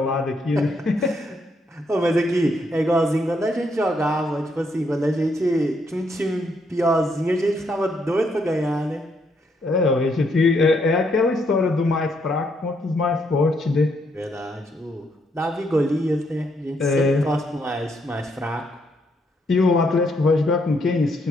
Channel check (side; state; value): both; normal; correlation 0.75